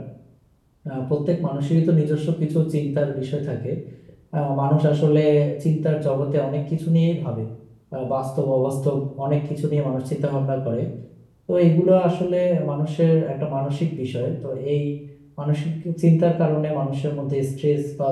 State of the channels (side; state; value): both; identical; correlation 1.00